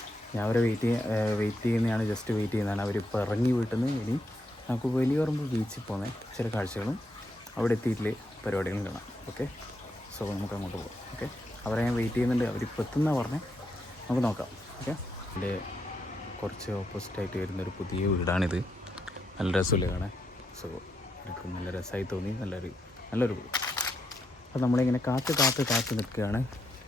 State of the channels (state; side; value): normal; both; correlation 0.80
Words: ഞാൻ അവരെ വെയിറ്റ് ചെയ്യുന്നതാണ്, ജസ്റ്റ് വെയിറ്റ് ചെയ്യുന്നതാണ്. അവരിപ്പോൾ ഇറങ്ങി വീട്ടിൽ നിന്ന് ഇനി നമുക്ക് വലിയപറമ്പ് ബീച്ചിൽ പോകുന്ന ചില കാഴ്ചകളും അവിടെ എത്തിയിട്ടില്ലേ പരിപാടികളും കാണാം. ഓക്കെ, സോ നമുക്ക് അങ്ങോട്ട് പോകാം. ഓക്കെ, അവരെ ഞാൻ വെയിറ്റ് ചെയ്യുന്നുണ്ട്. അവരിപ്പോൾ എത്തുന്ന പറഞ്ഞേ, നമുക്ക് നോക്കാം. ഓക്കെ, എൻ്റെ കുറച്ച് ഓപ്പോസിറ്റായിട്ട് വരുന്നൊരു പുതിയ വീടാണിത്. നല്ല രസമില്ല കാണാൻ. സോ എനിക്ക് നല്ല രസമായി തോന്നി, നല്ലൊരു അപ്പോൾ നമ്മളിങ്ങനെ കാത്ത് നിൽക്കുകയാണ്.